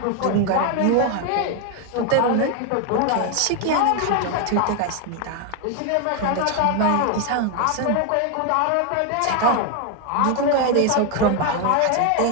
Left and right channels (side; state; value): both; different; correlation 0.01